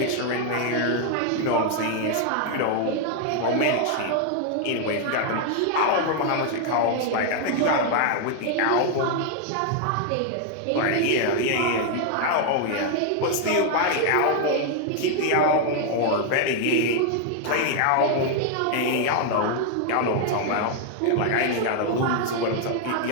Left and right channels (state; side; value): different; both; correlation 0.00